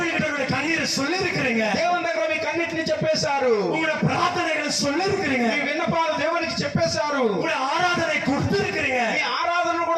கண்ணீரை சொல்லி இருக்கிறீங்க. దేవుని దగ్గర మీ కన్నిటిని చెప్పేశారు. உங்களுடைய பிரார்த்தனைகளை சொல்லி இருக்கிறீங்க. మీ విన్నపాలు దేవునికి చెప్పేశారు. உங்களுடைய ஆராதனை கொடுத்து இருக்கிறீங்க. మీ ఆరాధనను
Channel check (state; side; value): identical; both; correlation 1.00